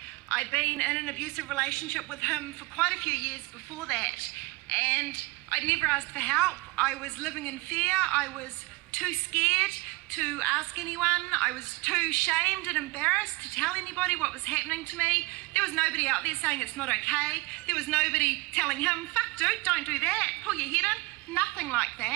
I'd been in an abusive relationship with him for quite a few years before that, and I'd never asked for help. I was living in fear. I was too scared to ask anyone. I was too shamed and embarrassed to tell anybody what was happening to me. There was nobody out there saying it's not okay. There was nobody telling him, fuck dude, don't do that, pull your head in. Nothing like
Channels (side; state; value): left; quieter; 23.5 dB